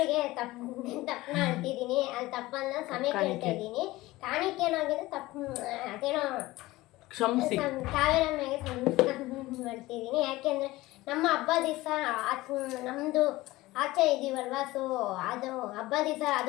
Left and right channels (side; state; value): right; quieter; 18.7 dB